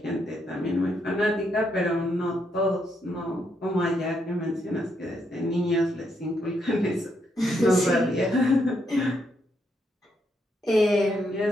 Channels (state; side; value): normal; both; correlation 0.77